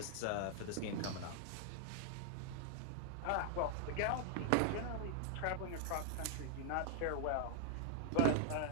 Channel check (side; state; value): both; different; correlation 0.00